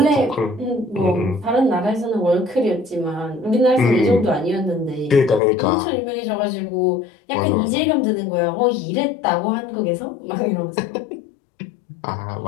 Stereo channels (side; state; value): right; drops out; at 5.4 s